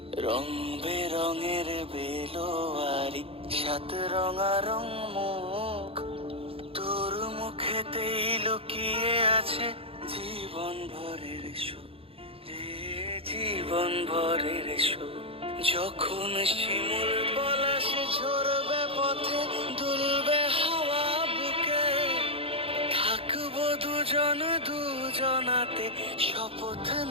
রং বেরঙের বেলোয়ারি সাত রঙারং মুখ, তোর মুখেতেই লুকিয়ে আছে জীবন ভরের সুখ, রে জীবন ভরের সুখ। যখন শিমুল পলাশ ঝরবে পথে, দুলবে হাওয়া বুকে, থাকবো দুজন দুজনাতে শপথ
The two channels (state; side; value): late; left; 0.27 ms